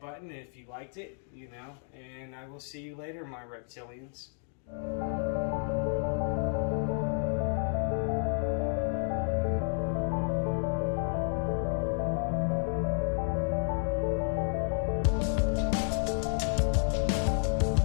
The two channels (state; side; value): silent; right; 56 dB below the other